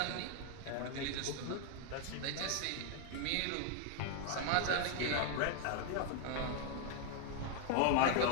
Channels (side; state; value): both; different; correlation 0.00